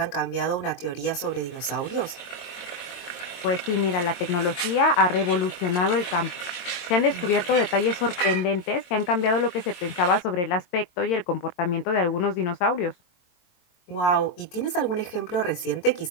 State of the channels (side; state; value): right; late; 22 ms